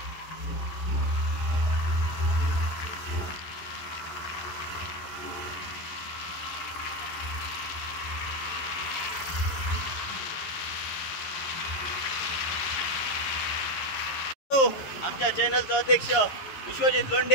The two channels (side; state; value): right; late; 11 ms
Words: आमच्या चॅनलचा अध्यक्ष विश्वजित